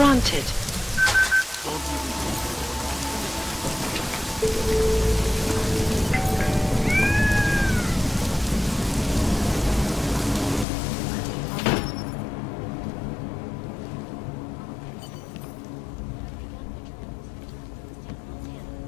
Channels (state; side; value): drops out; right; at 10.7 s